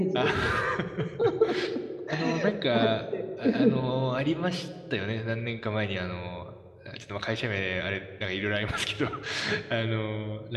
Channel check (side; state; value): both; identical; correlation 1.00